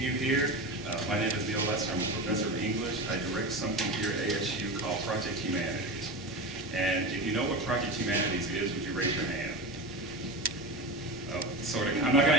you here. My name is Neil Lester. I'm a professor of English. I direct something here at ASU called Project Humanities. And if you know what Project Humanities is, would you raise your hand? Oh, sort of. I'm not going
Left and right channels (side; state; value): both; normal; correlation 0.25